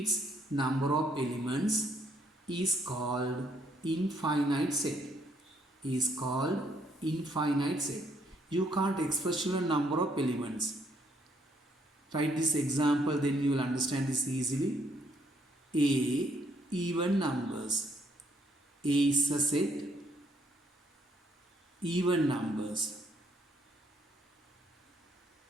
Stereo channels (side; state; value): both; normal; correlation 0.70